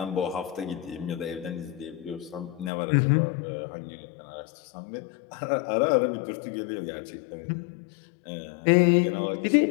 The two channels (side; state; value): right; drops out; at 2.7 s